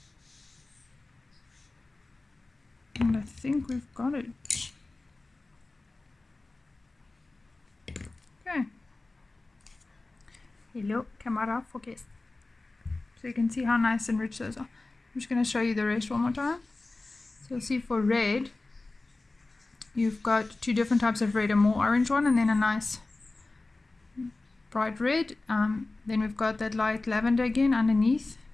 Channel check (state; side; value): quieter; right; 3.2 dB